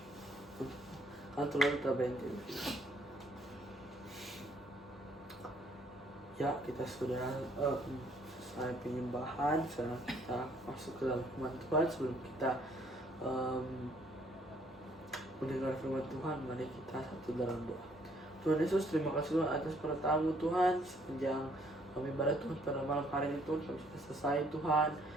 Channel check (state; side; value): normal; both; correlation 0.65